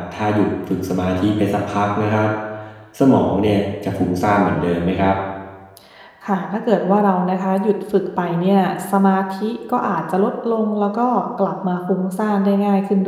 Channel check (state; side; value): identical; both; correlation 1.00